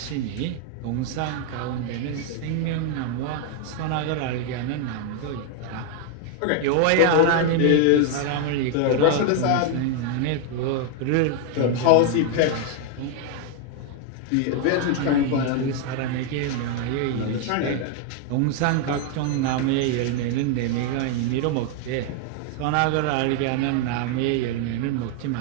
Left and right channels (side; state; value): both; different; correlation 0.00